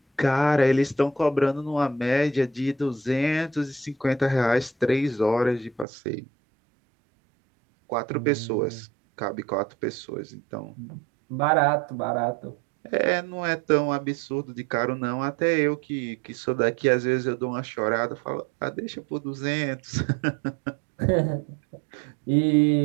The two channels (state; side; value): drops out; left; at 5.9 s